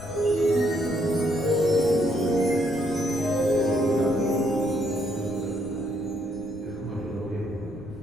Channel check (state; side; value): noise; left; rumble, 16 dB below the sound